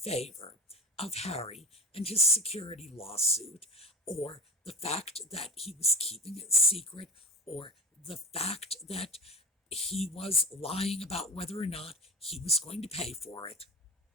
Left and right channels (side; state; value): both; normal; correlation 0.33